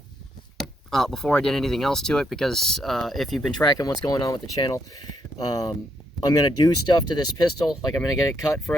before I did anything else to it, because if you've been tracking what's going on with the channel, I'm going to do stuff to this pistol, like I'm going to get it cut for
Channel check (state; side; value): normal; both; correlation 0.76